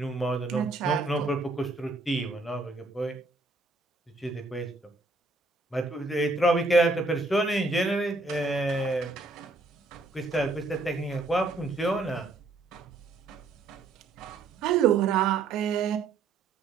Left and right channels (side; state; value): left; quieter; 3.5 dB